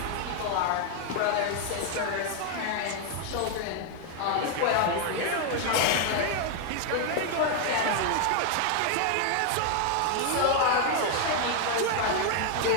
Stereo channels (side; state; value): both; different; correlation 0.00